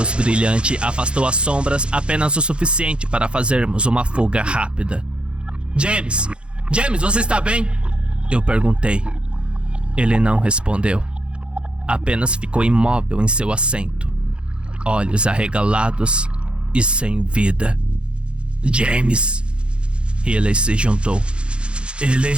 brilhante afastou as sombras apenas o suficiente para fazermos uma fuga rápida. James, você está bem? Eu perguntei. Ele não respondeu. Apenas ficou imóvel em seu assento, olhos arregalados e sem vida. James. Riley se juntou.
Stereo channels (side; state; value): left; late; 0.056 ms